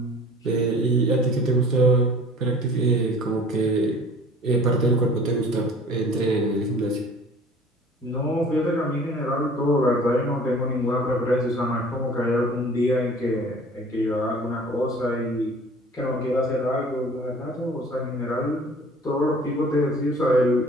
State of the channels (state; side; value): normal; both; correlation 0.47